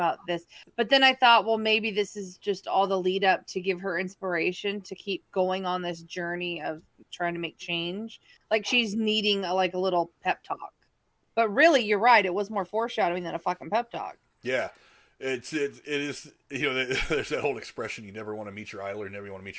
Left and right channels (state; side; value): identical; both; correlation 1.00